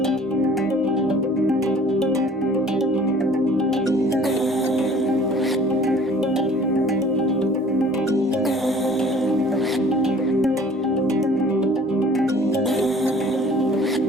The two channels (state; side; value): normal; both; correlation 0.51